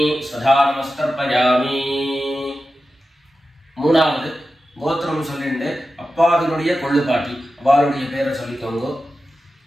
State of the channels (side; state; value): both; normal; correlation 0.92